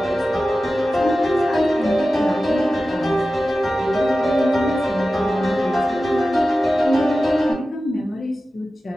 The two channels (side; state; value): both; normal; correlation 0.94